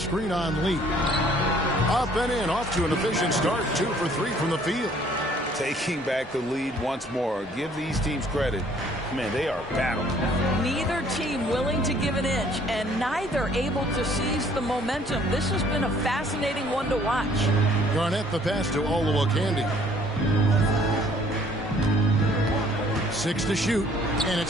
on Lee. Up and in, off to an efficient start. 2 for 3 from the field. Taking back the lead once more. Give these teams credit. Man, they are battling. Neither team willing to give an inch, and neither able to seize the momentum. This has been a fascinating one to watch. Garnett the pass to Olowokandi. 6 to shoot, and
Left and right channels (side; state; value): both; normal; correlation 0.59